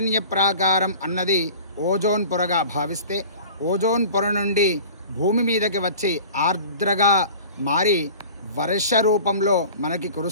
ప్రాకారం అన్నది ఓజోన్ పొరగా భావిస్తే ఓజోన్ పొర నుండి భూమి మీదకి వచ్చి ఆర్ద్రగా మారి వర్ష రూపంలో మనకి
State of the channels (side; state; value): both; inverted; correlation -0.41